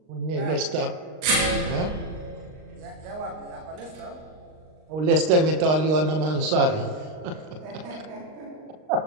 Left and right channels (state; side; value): late; left; 39 ms